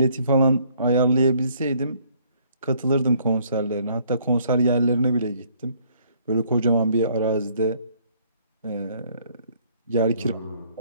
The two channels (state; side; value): inverted; both; correlation -0.63